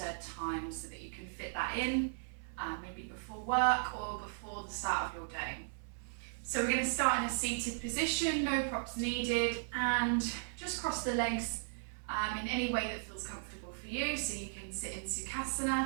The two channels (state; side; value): silent; left; digital silence